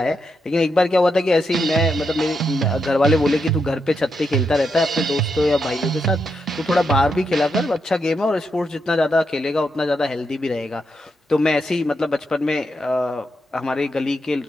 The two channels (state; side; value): normal; both; correlation 0.83